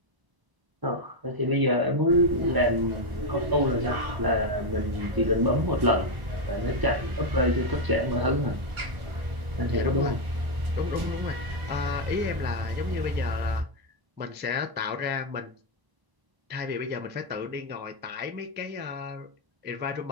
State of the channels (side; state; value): left; late; 1.0 ms